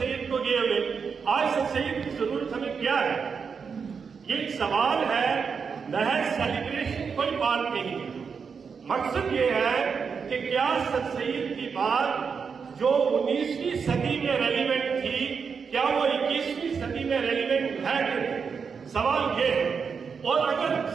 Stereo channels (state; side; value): quieter; left; 5.9 dB